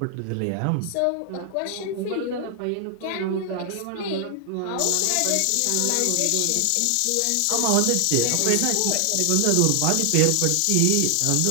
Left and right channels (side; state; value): both; different; correlation 0.00